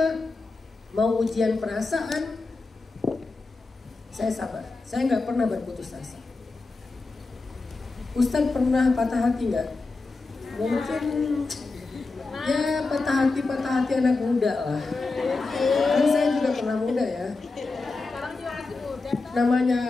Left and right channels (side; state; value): right; quieter; 3.7 dB